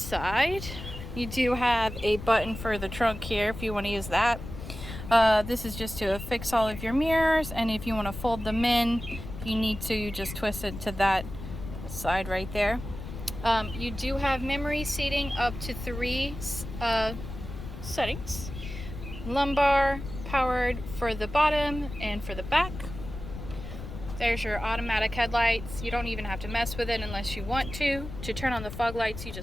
you do have a button for the trunk here if you want to use that. This is just to affix all of your mirrors, and if you want to fold them in, you need to, you just twist it to that side right there. You do have memory seating up to 3 settings. Lumbar powered for the bottom and for the back. There's your automatic headlights. You don't even have to mess with it unless you want to. To turn on the fog lights, you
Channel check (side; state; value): left; noise; rumble, 10 dB below the sound